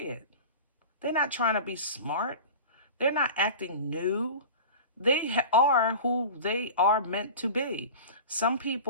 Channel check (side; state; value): both; inverted; correlation -0.34